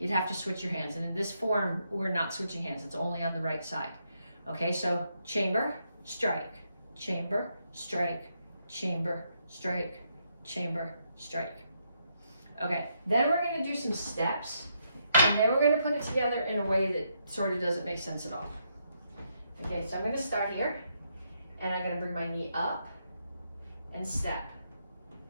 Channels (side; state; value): both; inverted; correlation -0.78